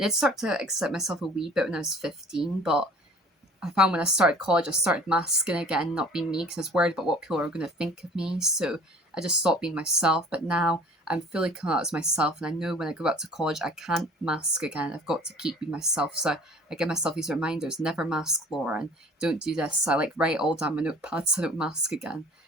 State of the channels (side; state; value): both; normal; correlation 0.49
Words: did start to accept myself a wee bit when I was 15, but I found when I started college, I started masking again, not being me, because I was worried about what people are going to think of me. So I just stopped being myself. But now I'm fully coming out as myself, and I know when I go back to college, I can't mask again. I've got to keep being myself. So I give myself these reminders: never mask, Laura, and don't do this. I like write all down my notepads so I don't mask again.